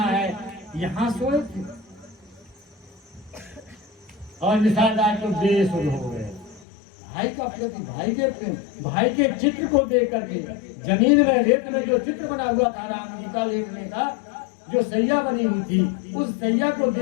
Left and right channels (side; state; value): right; drops out; at 6.7 s